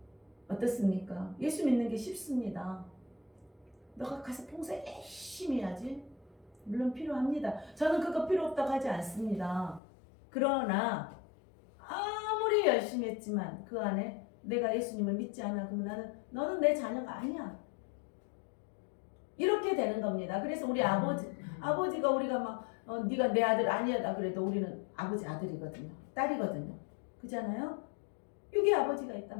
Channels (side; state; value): right; drops out; at 9.8 s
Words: 어떻습니까? 예수 믿는 게 쉽습니다. 너가 가서 봉사 열심히 해야지. 물론 필요합니다. 저는 그거 필요 없다고 하지 않습니다. 그러나 아무리 열심히 했지만 그 안에 내가 예수님을 믿지 않아 그러면 너는 내 자녀가 아니야. 이렇게 되는 겁니다. 그래서 우리 아버지가 우리가 막 네가 내 아들 아니야 그래도 우리는 아버지 아들이거든요. 딸이거든요. 그잖아요. 여기 아버지가